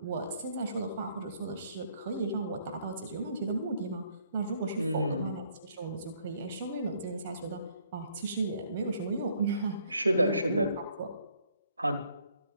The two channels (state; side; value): inverted; both; correlation -0.66